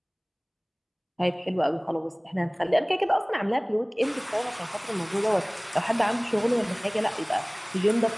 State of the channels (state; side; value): identical; both; correlation 1.00